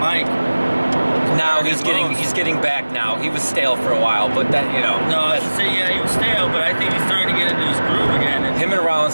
Now he's getting back now. He was stale for a while, but that, No, I should say, yeah, he was stale, but I think he's starting to get into his groove again. And him and Rollins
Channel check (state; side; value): inverted; both; correlation -1.00